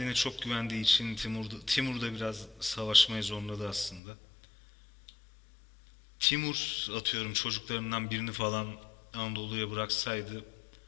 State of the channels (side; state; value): right; drops out; at 4.0 s